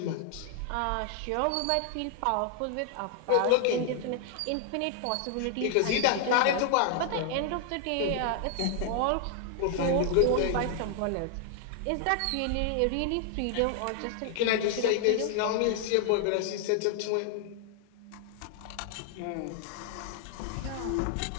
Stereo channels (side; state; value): both; different; correlation 0.00